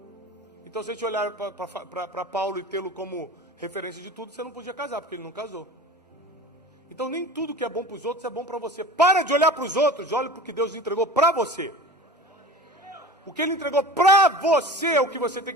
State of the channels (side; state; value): both; normal; correlation 0.36